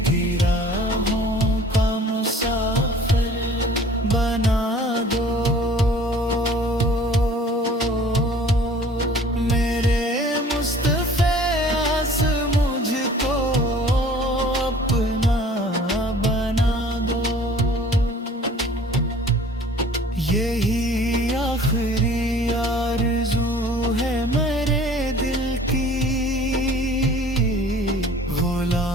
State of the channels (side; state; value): both; normal; correlation 0.50